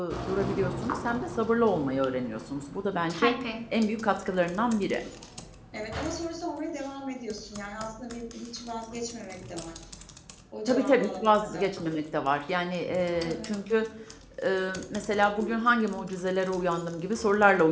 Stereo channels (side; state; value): both; identical; correlation 1.00